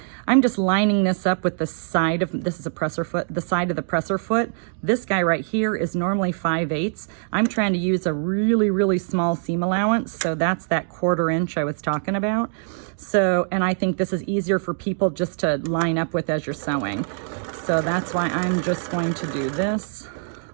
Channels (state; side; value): silent; left; digital silence